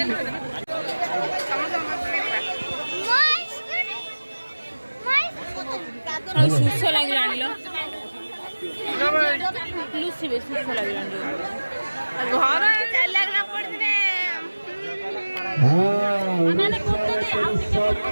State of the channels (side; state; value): both; inverted; correlation -1.00